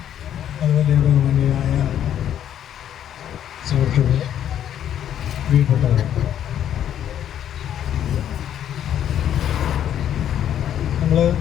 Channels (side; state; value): right; quieter; 10.2 dB